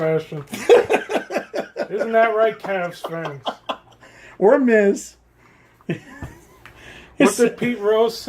Isn't that right, Cavs fans? Or Miz. What did Pete Rose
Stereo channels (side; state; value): both; identical; correlation 1.00